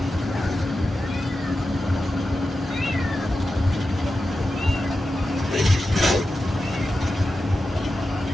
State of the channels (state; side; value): normal; both; correlation 0.91